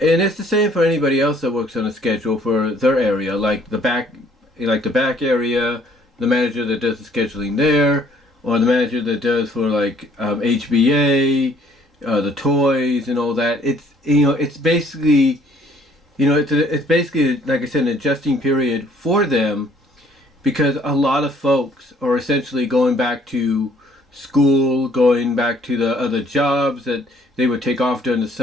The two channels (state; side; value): normal; both; correlation 0.61